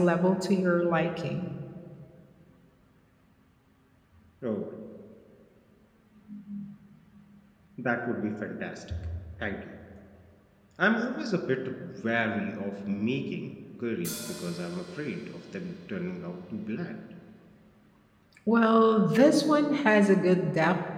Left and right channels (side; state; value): both; identical; correlation 1.00